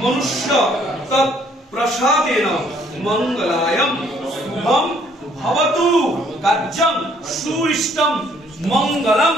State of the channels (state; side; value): normal; both; correlation 0.63